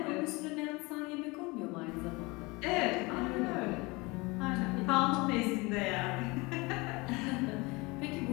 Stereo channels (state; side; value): quieter; right; 24.9 dB